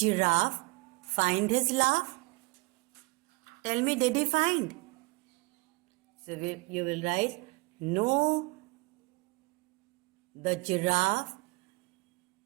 find his laugh? Tell me, did he find? So you will write, no, the giraffe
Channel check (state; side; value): quieter; left; 26.1 dB